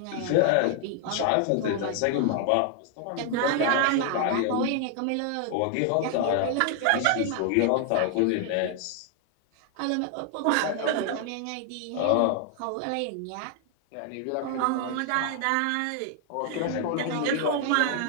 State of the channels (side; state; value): both; different; correlation 0.00